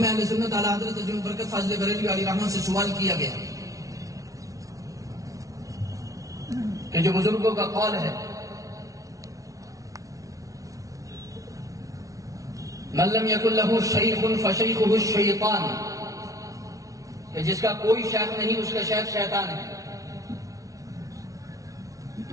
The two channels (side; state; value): left; late; 0.17 ms